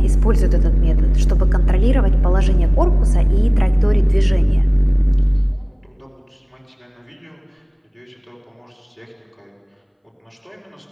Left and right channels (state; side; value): identical; both; correlation 1.00